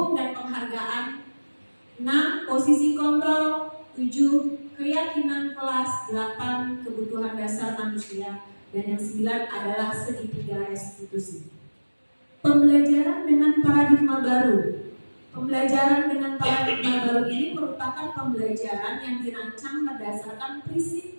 penghargaan, 6 posisi kontrol, 7 keyakinan kelas, 8 kebutuhan dasar manusia, dan yang 9 adalah segitiga restitusi. Pembelajaran dengan paradigma baru. Pembelajaran dengan paradigma baru ini merupakan pembelajaran yang dirancang berdasarkan prinsip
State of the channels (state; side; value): inverted; both; correlation -1.00